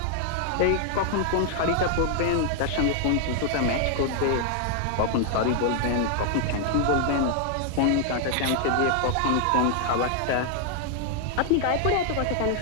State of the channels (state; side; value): different; both; correlation 0.00